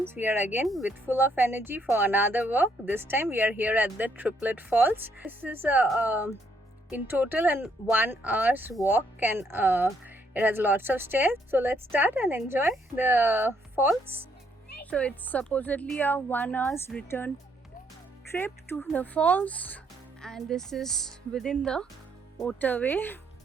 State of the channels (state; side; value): normal; both; correlation 0.71